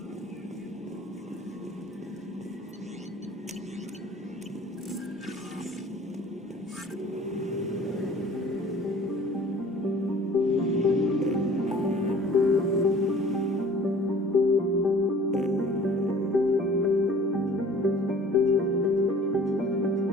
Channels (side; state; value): both; normal; correlation 0.49